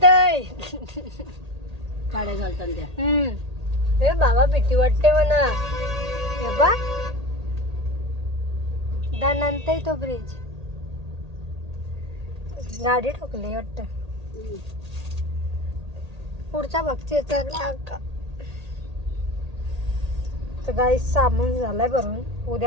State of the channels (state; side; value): late; left; 1.8 ms